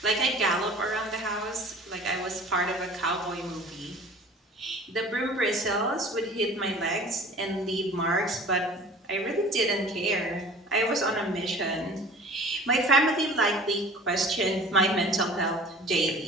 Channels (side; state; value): both; normal; correlation 0.44